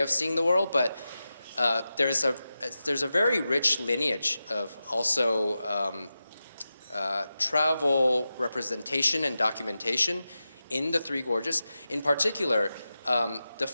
seeing the world, but there's a very rich lineage of also travel representation and documentation in the Three Gorges. In particular, the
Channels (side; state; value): both; inverted; correlation -0.92